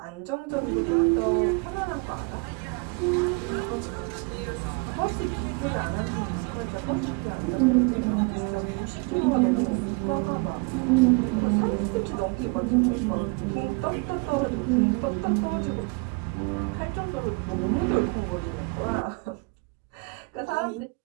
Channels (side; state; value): left; quieter; 29.1 dB